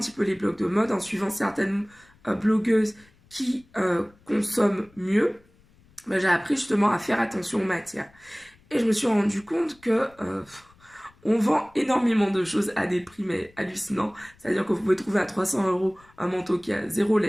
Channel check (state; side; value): noise; left; rumble, 30 dB below the sound